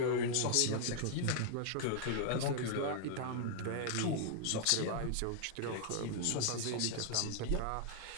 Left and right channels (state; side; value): different; both; correlation -0.01